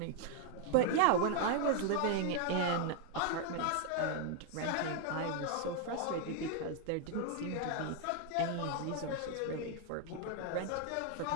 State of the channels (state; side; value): different; both; correlation 0.00